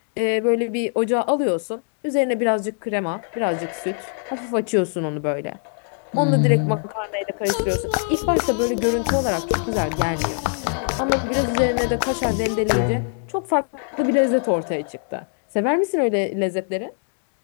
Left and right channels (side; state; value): right; silent; 58 dB below the other